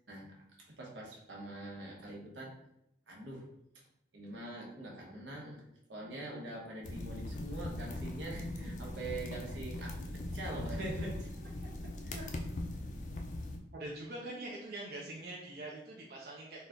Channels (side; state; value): both; normal; correlation 0.66